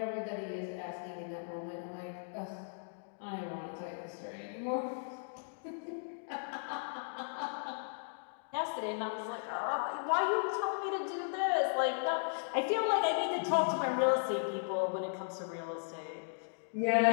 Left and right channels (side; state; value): right; silent; digital silence